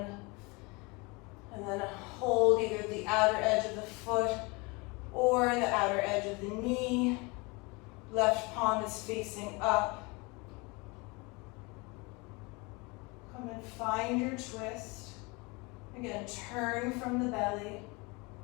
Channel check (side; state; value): right; quieter; 27.2 dB